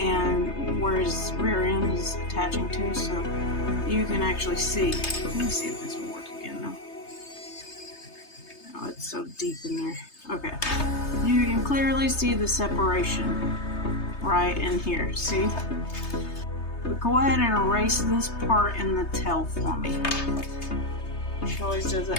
where his rear end is attaching to, so you can actually see. Let me see if this will work again though. Oh, it's so deep in there. Okay. You can clearly see the separation right in here. See? But go ahead and erase this part in the tail for me. She always does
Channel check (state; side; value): late; right; 3.3 ms